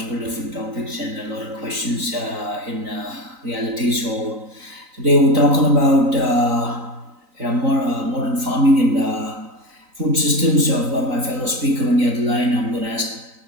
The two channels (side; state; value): left; late; 3.9 ms